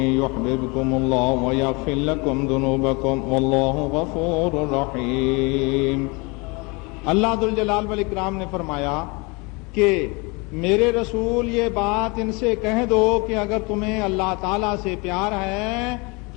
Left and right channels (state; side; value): quieter; right; 28.4 dB